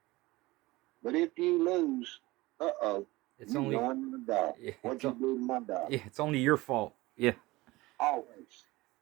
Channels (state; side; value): quieter; left; 20.4 dB